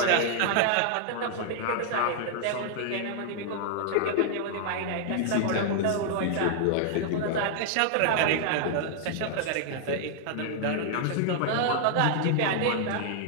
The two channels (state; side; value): different; both; correlation -0.01